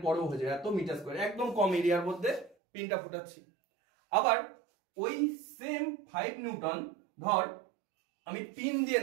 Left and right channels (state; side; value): drops out; left; at 2.6 s